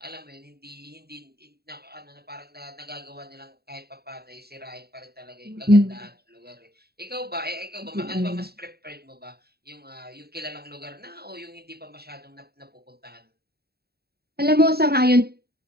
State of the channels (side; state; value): left; late; 0.46 ms